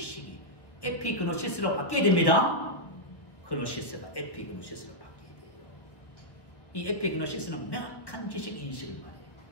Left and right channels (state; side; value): late; right; 1.4 ms